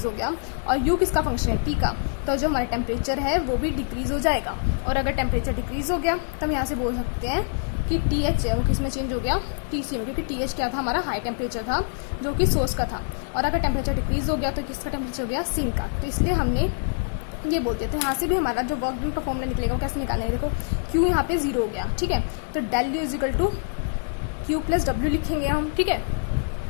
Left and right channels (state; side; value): silent; right; digital silence